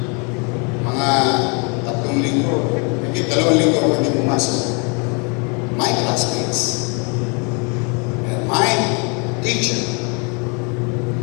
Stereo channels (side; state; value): right; quieter; 33.4 dB